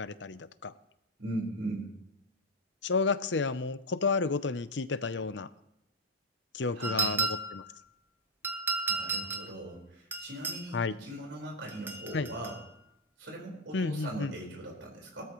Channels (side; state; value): both; normal; correlation 0.02